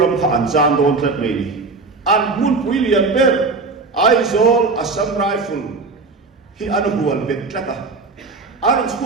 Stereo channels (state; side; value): quieter; left; 3.9 dB